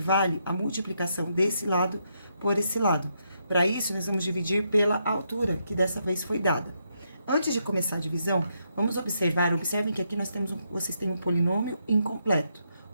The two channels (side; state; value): both; inverted; correlation -0.78